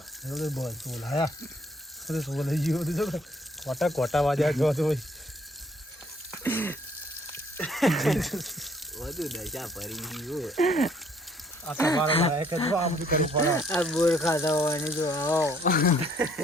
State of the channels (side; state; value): both; normal; correlation 0.63